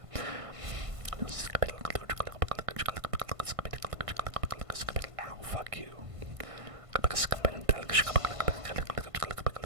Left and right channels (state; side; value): late; left; 1.5 ms